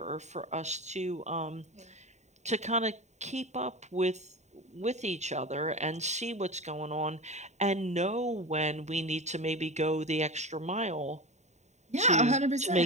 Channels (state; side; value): late; left; 0.33 ms